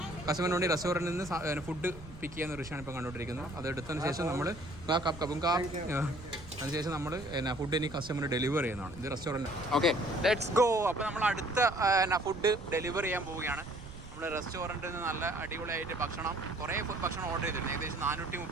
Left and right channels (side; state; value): right; noise; rumble, 15 dB below the sound